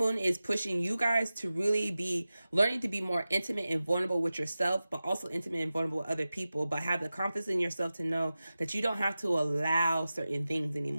is pushing you guys to really be learning to be more intimate and vulnerable with yourself, but also intimate and vulnerable with other people, but have the confidence in yourself to know that you don't have to allow certain things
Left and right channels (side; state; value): both; inverted; correlation -0.95